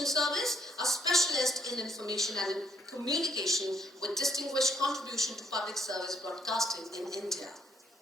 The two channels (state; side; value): normal; both; correlation 0.70